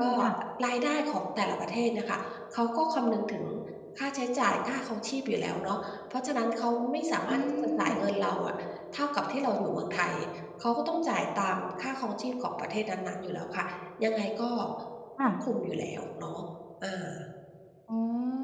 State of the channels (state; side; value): identical; both; correlation 1.00